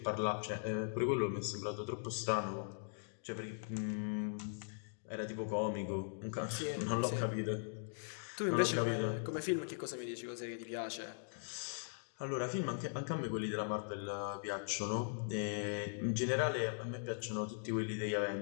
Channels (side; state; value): right; silent; digital silence